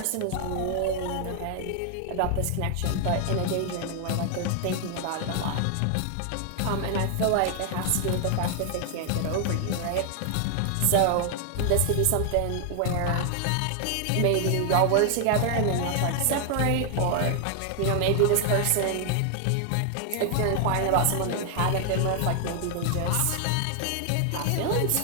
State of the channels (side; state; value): both; different; correlation 0.00